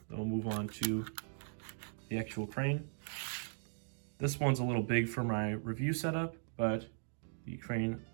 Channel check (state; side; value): silent; left; digital silence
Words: Then we'll move on to the actual crane. This one's a little big for my review setup, but the crane,